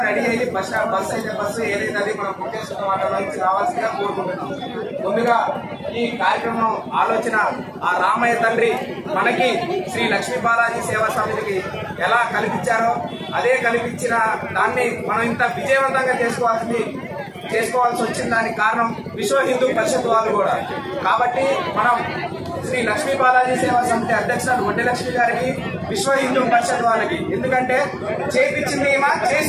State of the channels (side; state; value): both; identical; correlation 1.00